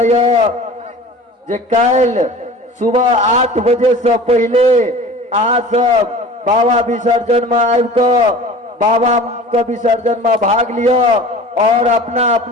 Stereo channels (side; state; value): both; normal; correlation 0.41